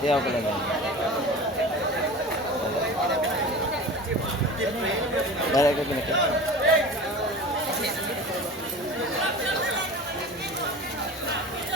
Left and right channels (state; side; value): normal; both; correlation 0.36